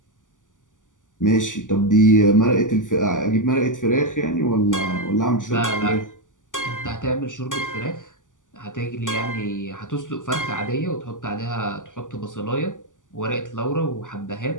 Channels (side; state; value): right; late; 0.87 ms